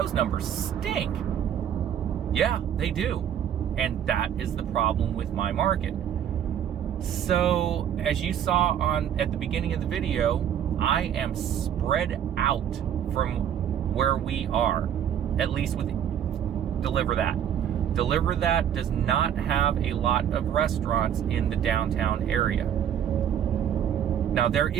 numbers stink. Yeah, they do. And that is the problem with my market. So, as you saw at the beginning of the video, I am spread out from where we are, at least with DeliverThat. DeliverThat does not have a lot of restaurants in the downtown area. Now, there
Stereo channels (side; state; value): left; quieter; 9.5 dB